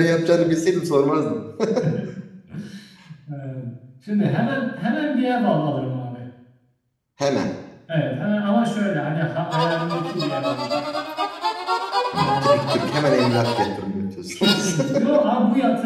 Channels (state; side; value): identical; both; correlation 1.00